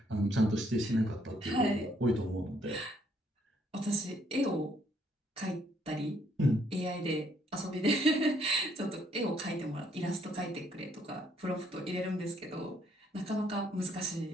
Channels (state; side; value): normal; both; correlation 0.68